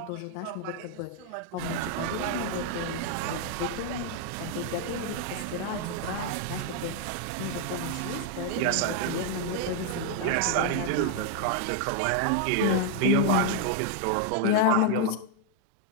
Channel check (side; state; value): both; different; correlation 0.00